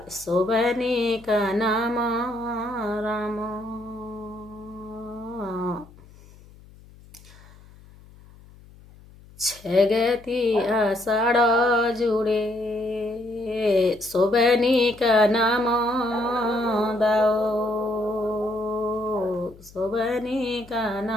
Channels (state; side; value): noise; left; hum, 23 dB below the sound